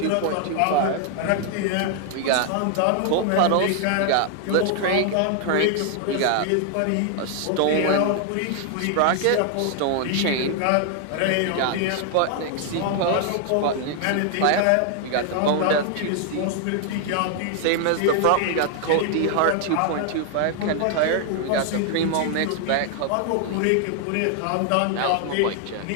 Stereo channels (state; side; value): different; both; correlation 0.00